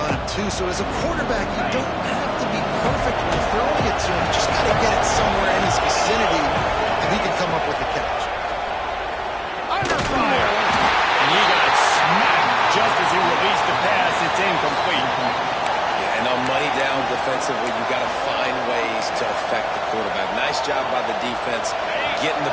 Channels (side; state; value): both; identical; correlation 1.00